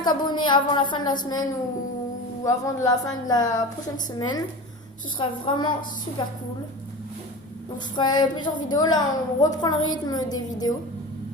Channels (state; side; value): normal; both; correlation 0.31